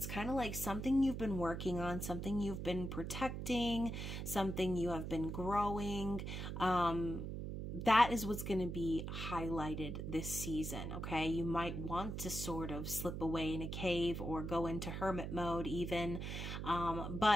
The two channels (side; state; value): right; noise; hum, 5 dB below the sound